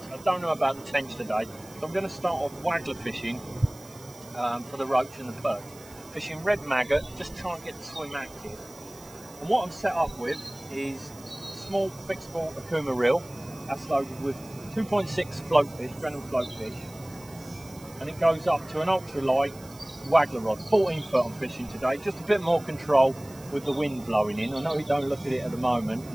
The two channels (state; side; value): noise; right; hiss, 21 dB below the sound